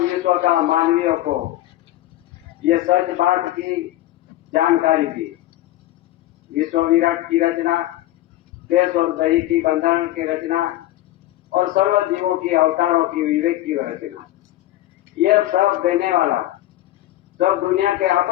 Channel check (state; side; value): quieter; right; 15.3 dB